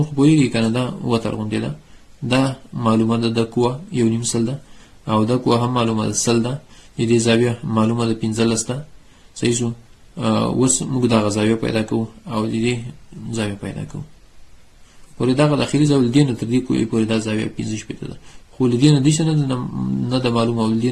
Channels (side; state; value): both; identical; correlation 1.00